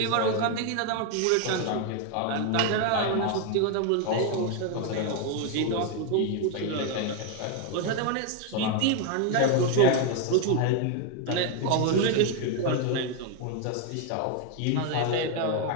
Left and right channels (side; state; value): both; different; correlation 0.01